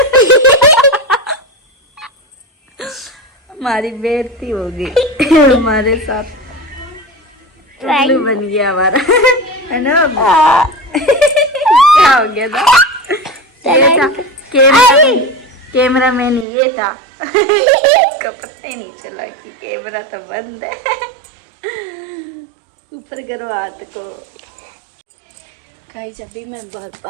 हमारी बेइज्जती हो गई हमारे साथ। उल्लू बन गया हमारा, है ना? क्या हो गया था? ये था कैमरा मैन, ये था। इसका पता ही नहीं चला कि कैमरा तो बंद है। ऊपर करो हाथ को। गाइस अभी मैं बाहर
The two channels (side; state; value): left; drops out; at 16.4 s